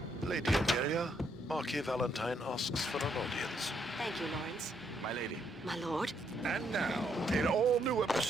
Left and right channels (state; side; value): normal; both; correlation 0.74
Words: Lady Amelia, Marquis Valentine asks for an audience. Thank you, Lawrence. My lady. My lord. And now, an all-new